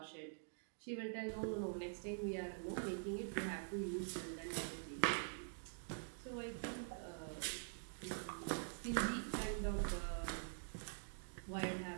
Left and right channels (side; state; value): left; silent; digital silence